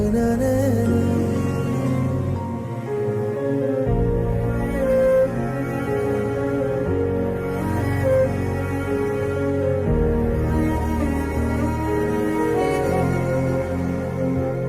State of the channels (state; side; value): identical; both; correlation 1.00